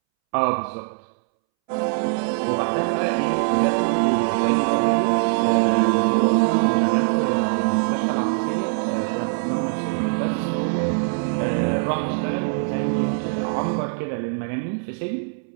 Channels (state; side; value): silent; left; 64 dB below the other